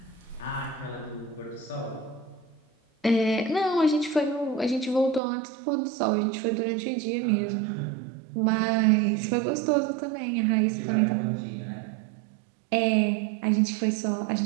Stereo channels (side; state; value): left; drops out; at 5.2 s